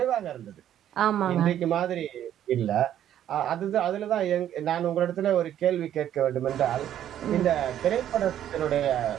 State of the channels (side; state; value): left; quieter; 11.0 dB